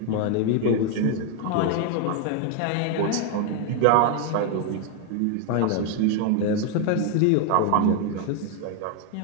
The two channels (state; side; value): different; both; correlation 0.00